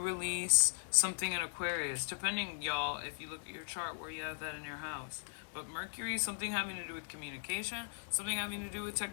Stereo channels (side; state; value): right; silent; 52 dB below the other